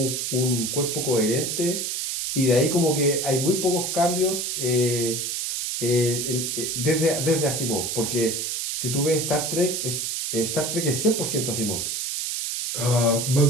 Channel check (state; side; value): noise; right; hiss, 2 dB below the sound